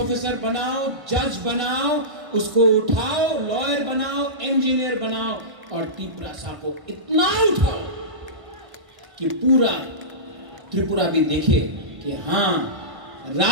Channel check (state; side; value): late; left; 1.5 ms